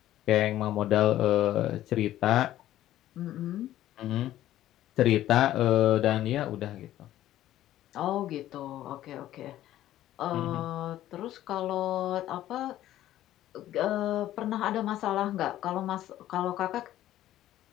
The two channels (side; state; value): right; quieter; 13.5 dB